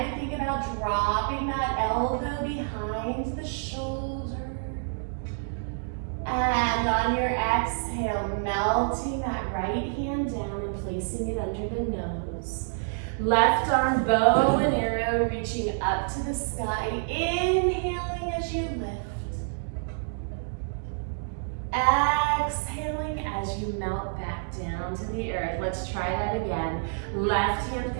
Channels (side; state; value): left; silent; digital silence